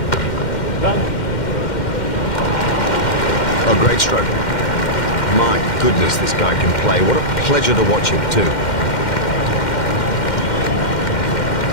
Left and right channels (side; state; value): right; late; 2.1 ms